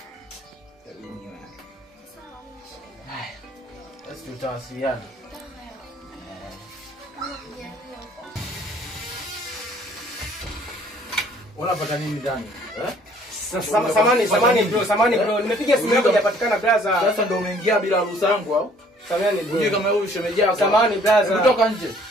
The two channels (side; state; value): both; normal; correlation 0.58